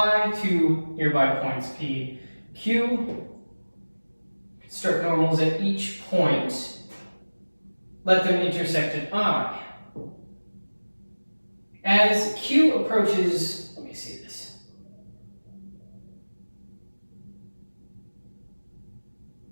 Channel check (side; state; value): both; inverted; correlation -1.00